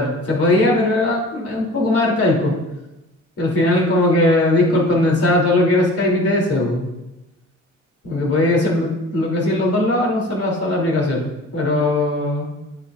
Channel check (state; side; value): normal; both; correlation 0.43